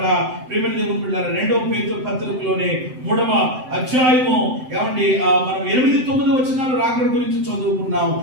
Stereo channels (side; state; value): left; late; 7.8 ms